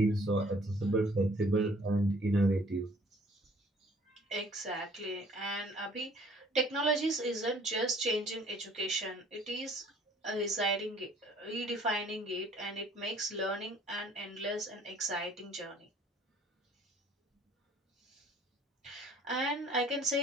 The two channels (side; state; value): both; normal; correlation 0.56